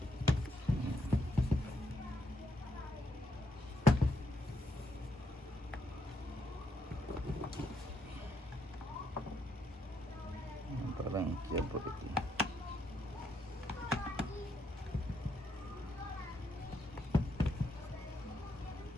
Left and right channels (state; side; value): normal; both; correlation 0.77